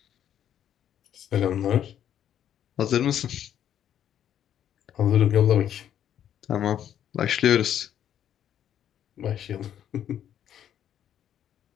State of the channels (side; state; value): right; quieter; 10.1 dB